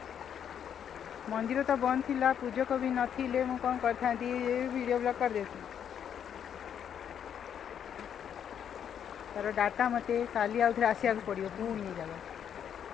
मंदिर तो बंद थिला पूजक भी नथिले मु कौन करता वीडियो ब्लॉग कर देती तार डाटा मते काली आउथरे आसिया पड़ो पुणी जगह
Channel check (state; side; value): quieter; right; 8.7 dB